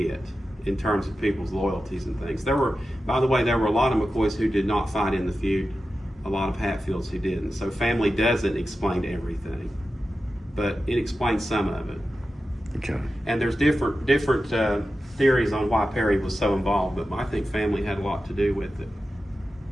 in terms of people's loyalties and things. By the way, there were a lot of McCoys who did not fight in the feud, a lot of Hatfields who didn't. So family doesn't explain everything, but it explains some of it. Okay. And there's different theories on why Perry was so involved, but I think family had a lot to do with it.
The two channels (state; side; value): normal; both; correlation 0.92